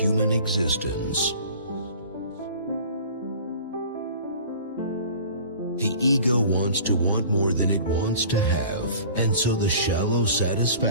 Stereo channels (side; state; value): both; inverted; correlation -0.44